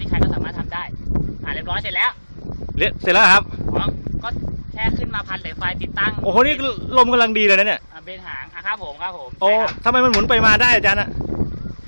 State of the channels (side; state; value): both; inverted; correlation -1.00